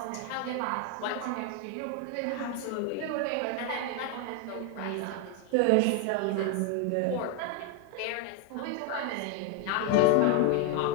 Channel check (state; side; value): different; both; correlation 0.01